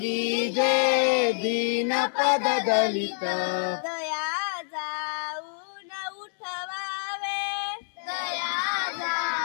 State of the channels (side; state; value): right; silent; digital silence